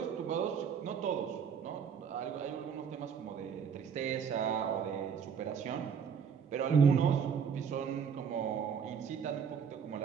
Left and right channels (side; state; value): left; quieter; 7.0 dB